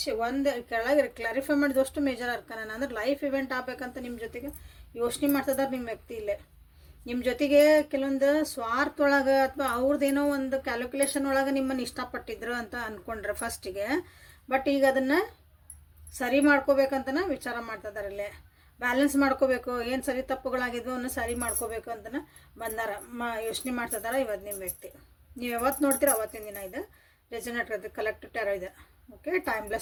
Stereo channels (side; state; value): both; identical; correlation 1.00